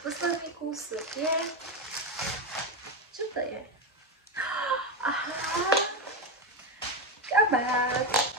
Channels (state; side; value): normal; both; correlation 0.13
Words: posledný kúsok je... Čo to je? Aha, kabát.